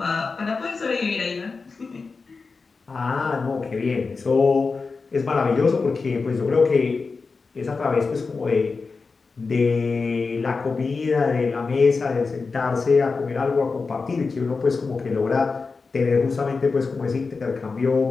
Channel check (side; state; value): right; quieter; 4.4 dB